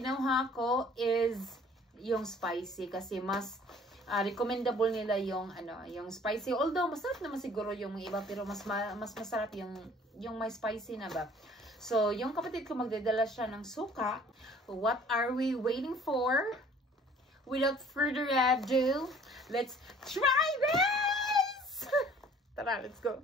ko is yung spicy kasi mas recommendable nila yung yung spicy. Although masarap naman siguro yung iba pero mas masarap yung may spicy na ba. So, yung kapatid ko magdadala siya ng suka. What are we waiting for? Without further ado, let's try this! Tara, let's go.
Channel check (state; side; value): normal; both; correlation 0.53